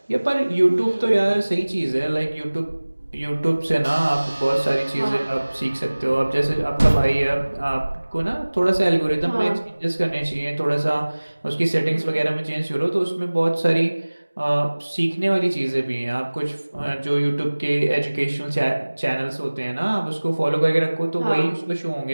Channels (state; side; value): inverted; both; correlation -1.00